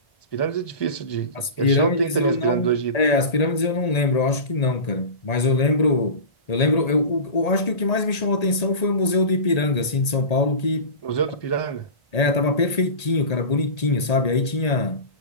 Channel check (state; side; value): late; right; 1.8 ms